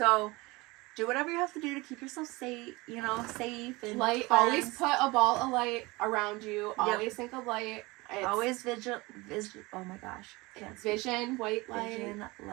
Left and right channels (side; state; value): left; quieter; 23.1 dB